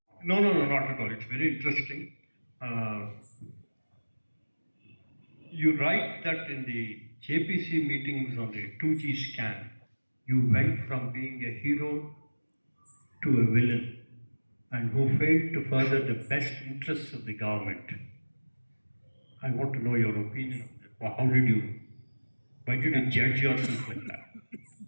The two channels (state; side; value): inverted; both; correlation -1.00